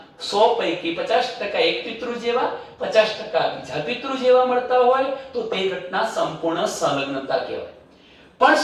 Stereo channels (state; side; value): identical; both; correlation 1.00